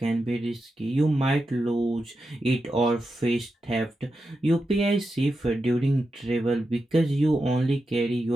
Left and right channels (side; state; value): both; normal; correlation 0.89